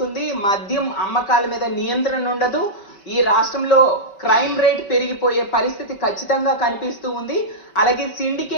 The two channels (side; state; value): right; late; 5.2 ms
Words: మద్యం అమ్మకాల మీద నియంత్రణ ఉండదు. ఈ రాష్ట్రంలో క్రైమ్ రేట్ పెరిగిపోయే పరిస్థితి ఖచ్చితంగా కనిపిస్తూ ఉంది. అలాగే